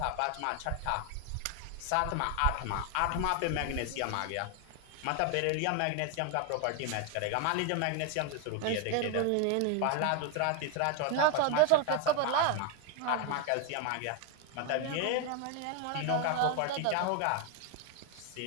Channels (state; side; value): different; both; correlation 0.01